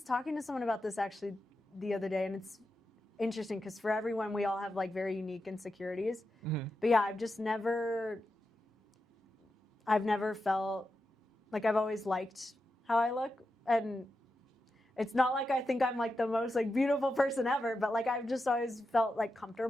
talking to someone about this actually the other day, and it's interesting because for everyone, we all have like very unique insecurities. But yeah, I've never felt like, I've always liked how I look, and it's not like I think I'm like the most like beautiful person ever, but like I've just always felt like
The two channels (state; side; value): normal; both; correlation 0.88